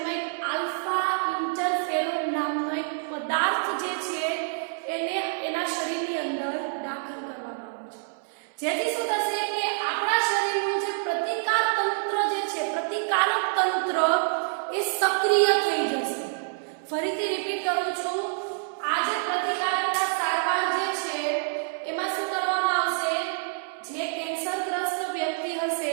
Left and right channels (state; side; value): silent; left; 60 dB below the other